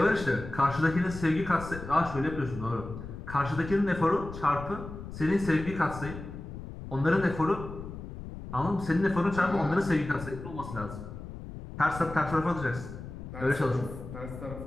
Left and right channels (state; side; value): noise; left; rumble, 11 dB below the sound